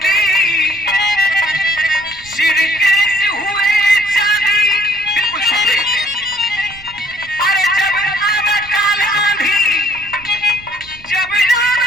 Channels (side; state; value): right; noise; rumble, 22 dB below the sound